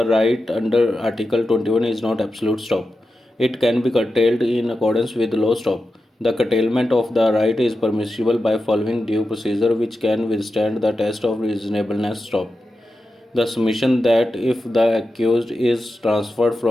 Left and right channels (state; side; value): normal; both; correlation 0.91